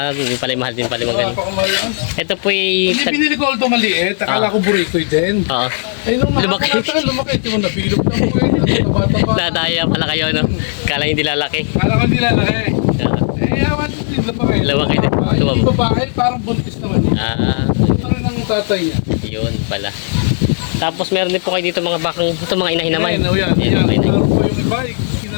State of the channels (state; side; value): silent; right; 59 dB below the other